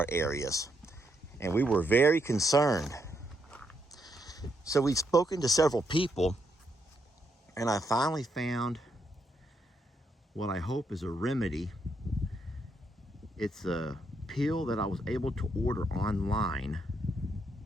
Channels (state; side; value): normal; both; correlation 0.77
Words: areas, and we were very concerned. So we've spoken to several people, and I finally found what I hope is a remedy. It's a pill that I was able to order online,